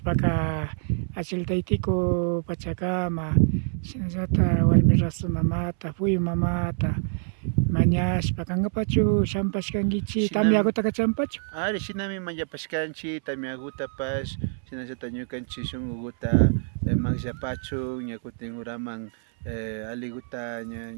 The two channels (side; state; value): left; silent; 61 dB below the other